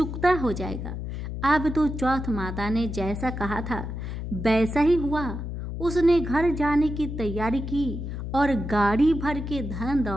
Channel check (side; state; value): left; noise; hum, 6 dB below the sound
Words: हो जाएगा। अब तो चौथ माता ने जैसा कहा था वैसा ही हुआ। उसने घर जाने की तैयारी की और गाड़ी भर के धन